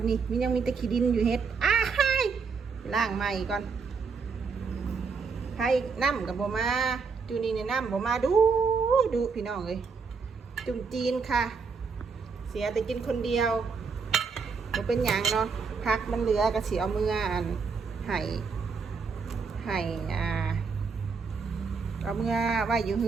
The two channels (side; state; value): left; quieter; 5.1 dB